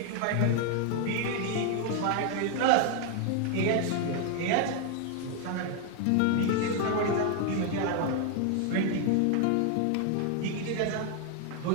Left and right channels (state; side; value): different; both; correlation 0.00